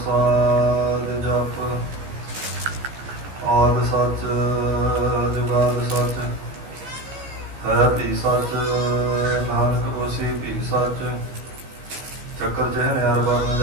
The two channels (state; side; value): late; left; 15 ms